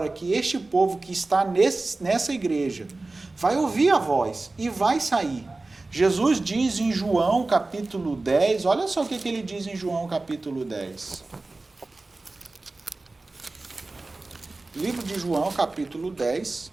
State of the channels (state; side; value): quieter; left; 3.3 dB